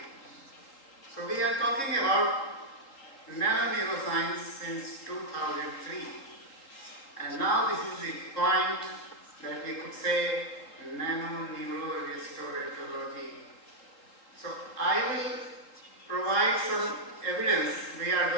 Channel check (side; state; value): right; late; 3.8 ms